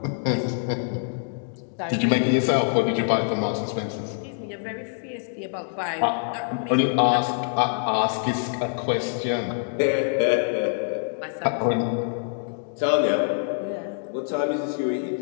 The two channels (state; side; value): silent; right; digital silence